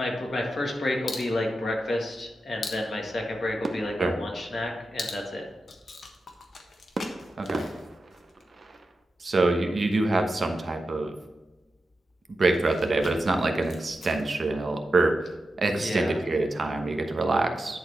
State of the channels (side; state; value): both; normal; correlation 0.90